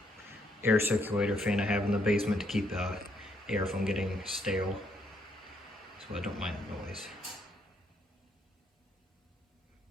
air circulator fan I have in the basement to keep air from getting stale, so I don't mind the noise.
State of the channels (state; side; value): normal; both; correlation 0.73